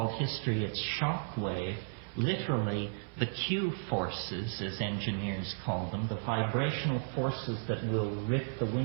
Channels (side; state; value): left; silent; 55 dB below the other